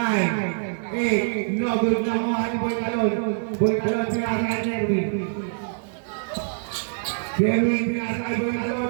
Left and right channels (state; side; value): silent; left; digital silence